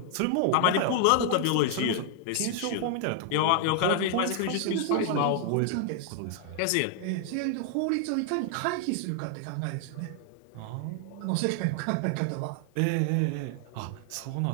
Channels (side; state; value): both; different; correlation 0.00